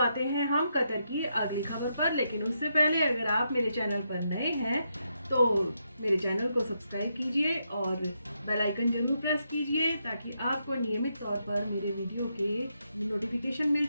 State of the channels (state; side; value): inverted; both; correlation -0.81